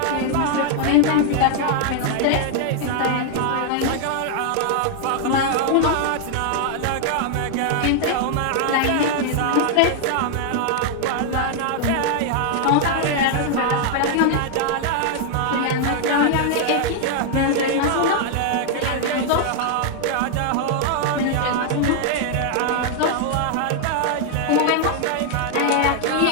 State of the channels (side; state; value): both; different; correlation 0.00